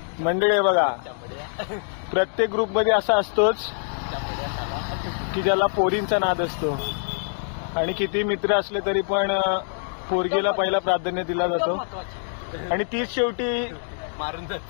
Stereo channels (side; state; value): right; silent; digital silence